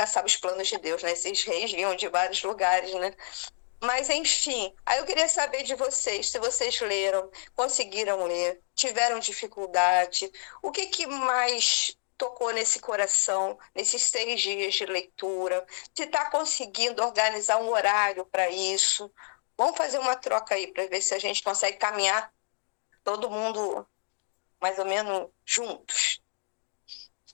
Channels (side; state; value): right; silent; 59 dB below the other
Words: sabe os planos de Deus, né? Esses reis vinham de vários lugares, né? Mas, enfim, aí eu queria saber de vocês, se vocês leram, conseguiram ler, tiveram dificuldade, o que mais tocou nesse coração, nesses 6 dias de leitura, se está conseguindo organizar um horário para isso. Vamos fazer uma troca aí para ver se a gente consegue caminhar todo mundo mais ou menos juntos.